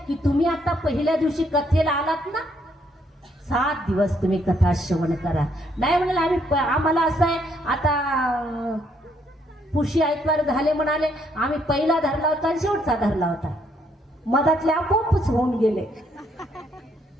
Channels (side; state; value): both; normal; correlation 0.71